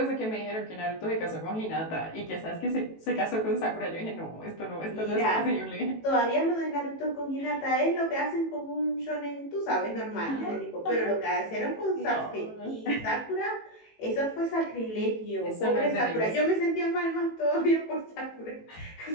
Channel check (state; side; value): late; right; 18 ms